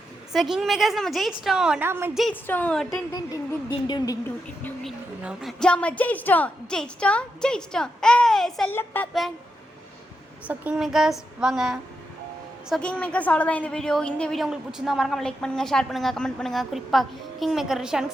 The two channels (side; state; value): both; normal; correlation 0.86